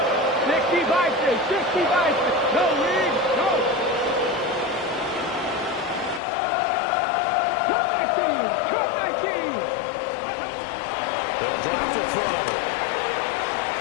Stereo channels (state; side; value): drops out; right; at 6.2 s